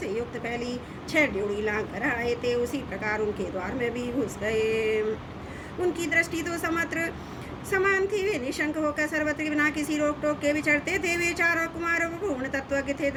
युक्त फैली 6 ड्योढ़ी लांघ कर आए थे, उसी प्रकार उनके द्वार में भी घुस गए। उनकी दृष्टि तो समत्र समान थी। वे निशंक होकर सर्वत्र बिना किसी रोक टोक के विचरते थे। वे चारों कुमारों पूर्ण तत्वज्ञ थे।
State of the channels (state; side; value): identical; both; correlation 1.00